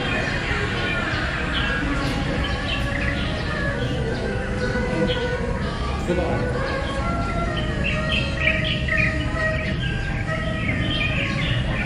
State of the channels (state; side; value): identical; both; correlation 1.00